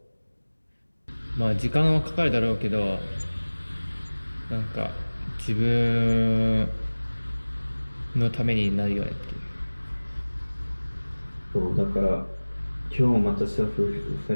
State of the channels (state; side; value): inverted; both; correlation -1.00